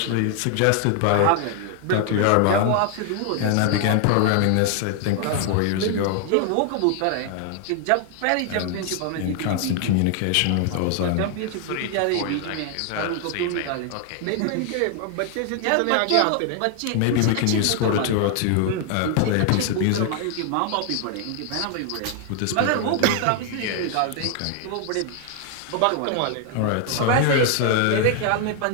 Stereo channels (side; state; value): both; different; correlation 0.00